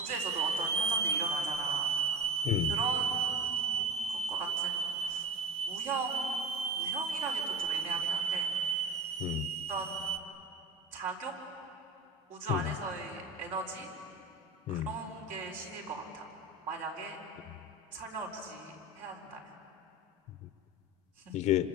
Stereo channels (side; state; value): both; normal; correlation 0.30